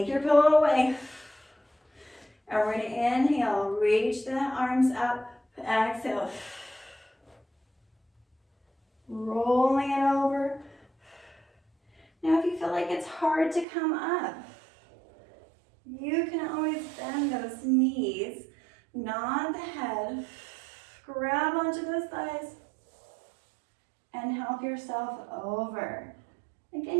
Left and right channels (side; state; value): left; drops out; at 13.7 s